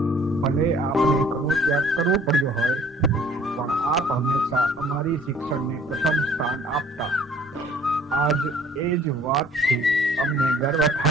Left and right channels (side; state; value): both; normal; correlation 0.54